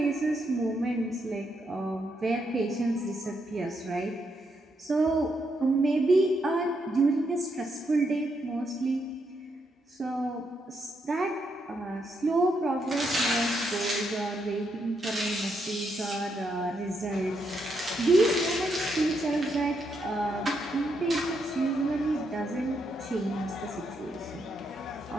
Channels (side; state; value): both; normal; correlation 0.79